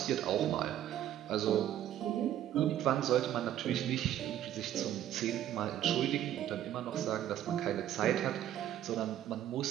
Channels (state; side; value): quieter; left; 11.7 dB